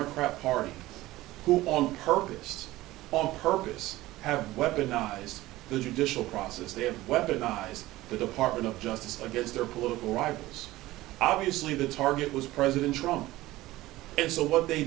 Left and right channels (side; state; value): left; quieter; 17.4 dB